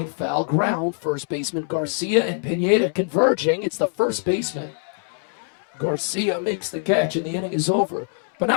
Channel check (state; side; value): silent; right; 62 dB below the other